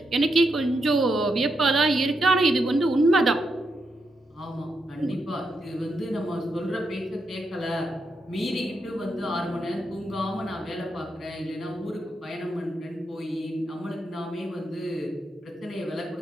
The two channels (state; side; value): normal; both; correlation 0.83